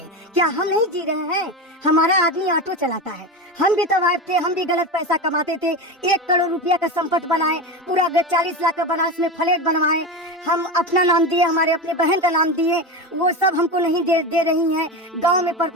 क्या हम नहीं जी रहे हैं? हमारा आदमी ऑटो चलाता है, हम भी तवाइफ थे, हम भी गलत पैसा कमाते थे। 1 करोड़ रुपया का संपत्ति बनाए, पूरा 40 लाख का बनारस में फ्लैट बनवाए। हम अपना नाम दिए, हमारे अपने बहन का नाम दिए, वो सब हमको नहीं दे रही हैं। गांव में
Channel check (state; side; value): normal; both; correlation 0.21